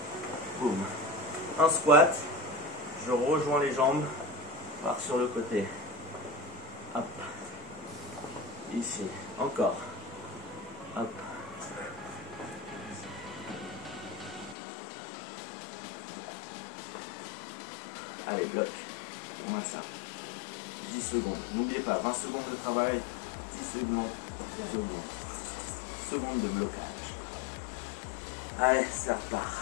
Boum. Un squat. Je rejoins les jambes. Par sur le côté. Hop. Ici. Encore. Hop. Allez, bloc. On maintient. 10 secondes. N'oubliez pas, 20 secondes de travail, 10 secondes de blocage. Allez, ça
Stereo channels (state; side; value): drops out; right; at 14.6 s